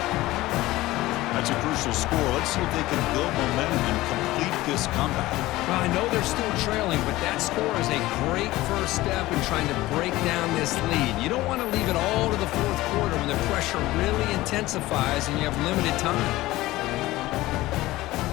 That's a crucial score. Let's see if they can build momentum and complete this comeback. Well, I know they're still trailing, but that score is a great first step in trying to break down this lead. You don't want to leave it all to the fourth quarter when the pressure really intensifies and you have limited time.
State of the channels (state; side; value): quieter; right; 17.8 dB